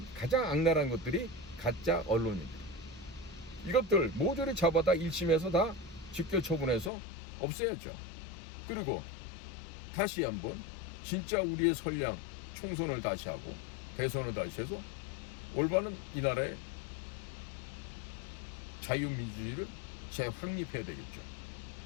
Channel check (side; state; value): right; drops out; at 6.9 s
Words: 가장 악랄한 것들이 가짜 언론인들. 이것들 모조리 잡아다 1심에서 다 직결 처분해서 없애야죠. 그리고 다시 한번 진짜 우리의 선량 총선을 다시 하고 대선을 다시 해서 올바른 이 나라의 자유민주주의를 재확립해야 되겠죠.